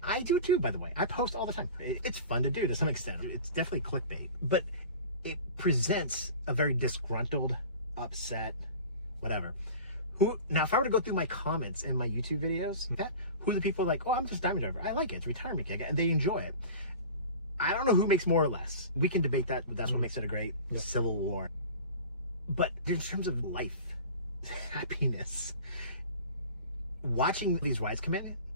I do too, by the way. I post all the time. It's fun to do to some extent. It's definitely clickbait, but it presents a very disgruntled, upset, whatever. Now, if I were to go through my comments in my YouTube videos, who are the people like, oh, I'm just a diamond driver. I like it. It's a retirement gig, and they enjoy it. I don't know who makes more or less. We can debate that, but that's what makes it a great civil war. But in terms of life, happiness, watching these rides come in,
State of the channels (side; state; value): both; inverted; correlation -0.37